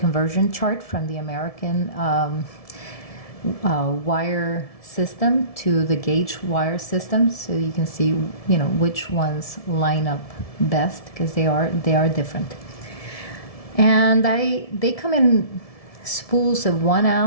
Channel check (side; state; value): right; late; 1.7 ms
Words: chart from the American wire system to the gauge wire system, so you can see which ones line up best, because they are different. And they come in spools of 1